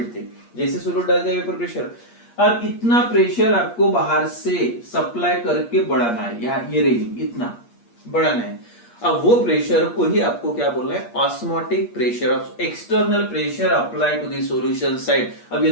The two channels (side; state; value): right; late; 8.5 ms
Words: थे, जैसे सोल्यूट डाल दिया वेपर प्रेशर, अब इतना प्रेशर आपको बाहर से सप्लाई करके बढ़ाना है, या ये रेंज इतना बढ़ाना है. अब वो प्रेशर को ही आपको क्या बोलना है? Osmotic pressure, external pressure apply to the solution side. अब ये